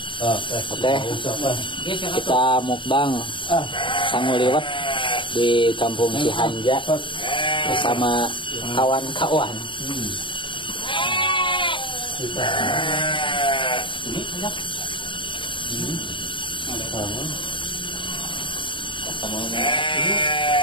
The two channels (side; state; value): right; late; 0.24 ms